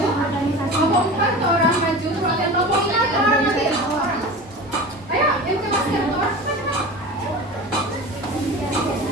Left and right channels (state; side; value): normal; both; correlation 0.33